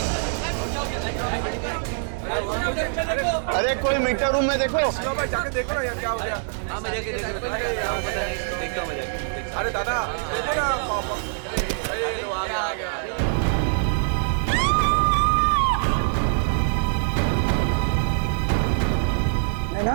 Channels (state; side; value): silent; left; digital silence